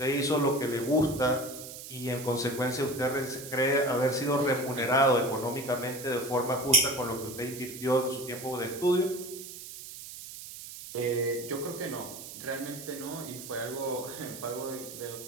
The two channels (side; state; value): right; noise; hiss, 12 dB below the sound